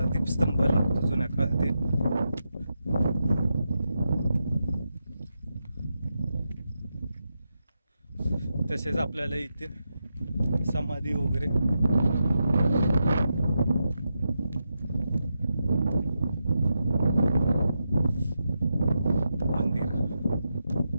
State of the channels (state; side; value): inverted; both; correlation -0.86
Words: दीपस्तंभ लागतो जुन्या काळातील. तसेच आपल्याला इथे समाधी वगैरे मंदिर.